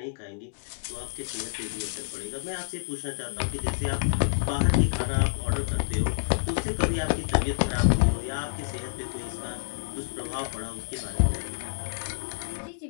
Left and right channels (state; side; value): silent; right; 59 dB below the other